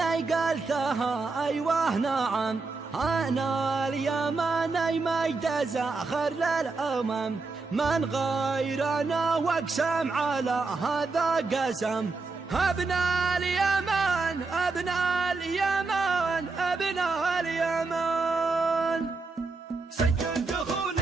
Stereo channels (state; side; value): quieter; left; 3.9 dB